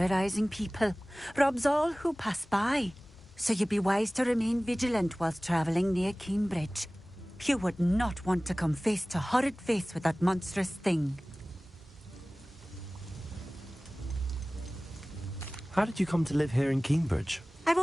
people, robs all who pass by. So you'd be wise to remain vigilant whilst traveling near Cambridge. You would not want to come face to horrid face with that monstrous thing. How did you come to live here in Cambridge? I've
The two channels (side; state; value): both; normal; correlation 0.98